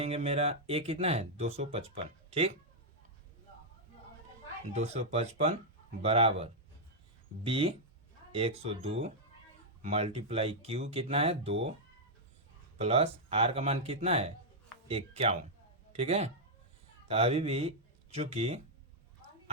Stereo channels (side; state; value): both; normal; correlation -0.04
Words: मेरा ए कितना है 255, ठीक। 255 बराबर बी 102 मल्टीप्लाई क्यू कितना है 2 प्लस आर का मान कितना है 51, ठीक है। तो अभी भी चूंकि